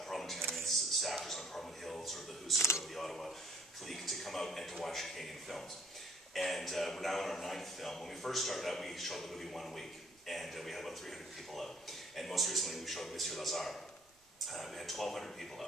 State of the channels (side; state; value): both; normal; correlation 0.61